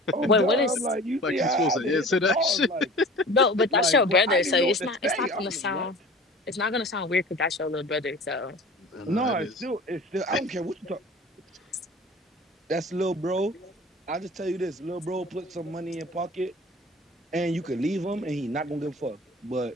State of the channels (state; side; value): normal; both; correlation 0.41